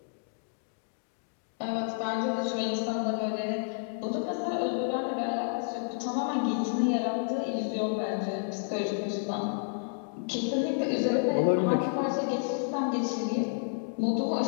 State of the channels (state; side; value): silent; right; digital silence